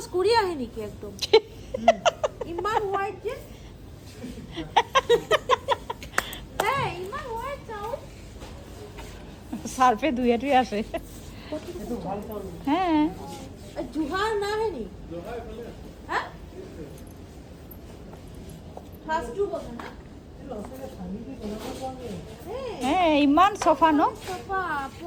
কৰি আহে নেকি একদম? ইমান হোয়াইট যে হ্যাঁ ইমান হোয়াইট চাউল। সার্ফে ধুয়ে টুয়ে আসে। হ্যাঁ জোহা না হে নি হ্যাঁ ফাস্টু কথা না হ্যাঁ ইমান চফা ন? চাফা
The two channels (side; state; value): both; identical; correlation 1.00